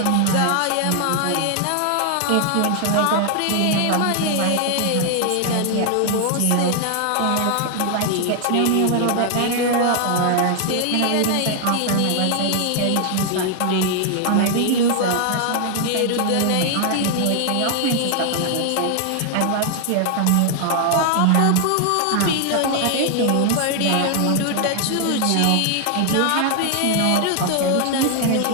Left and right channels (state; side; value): different; both; correlation 0.00